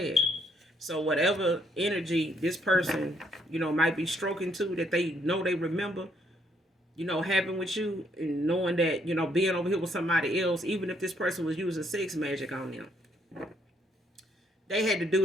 So whatever energy this person, might be stroking to, that they know they remember, having with you, and knowing that, being over here with somebody else, even if this person was using sex magic on them, they had to do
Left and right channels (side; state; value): both; normal; correlation 0.70